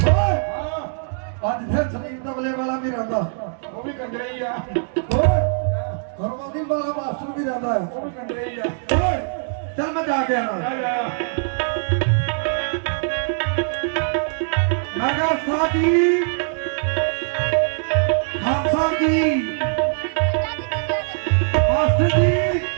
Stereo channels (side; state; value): left; silent; digital silence